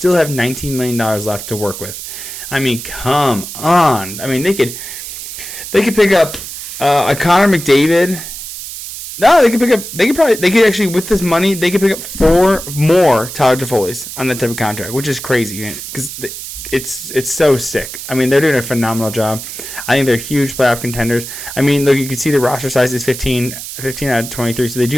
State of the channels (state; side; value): noise; right; hiss, 10 dB below the sound